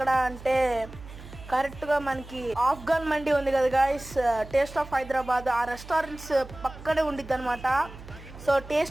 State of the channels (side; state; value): right; noise; hum, 16 dB below the sound